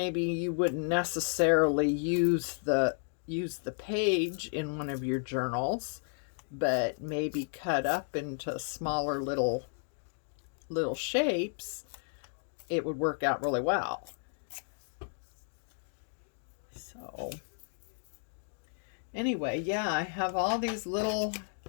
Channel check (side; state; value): right; silent; 56 dB below the other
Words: you wouldn't necessarily use the page in one of your journals, but maybe cut up into smaller little shapes. It would work out really well. So anyway, yeah, I have all these little